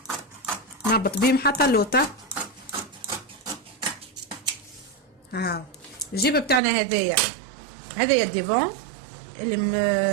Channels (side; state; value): left; drops out; at 6.6 s